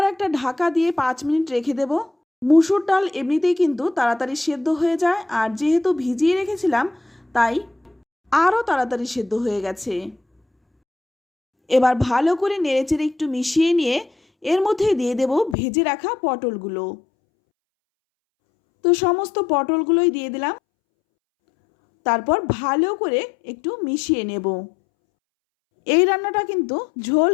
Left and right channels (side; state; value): right; drops out; at 15.6 s